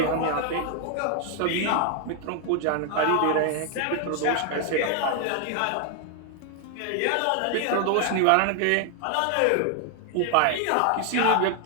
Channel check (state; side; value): different; both; correlation 0.00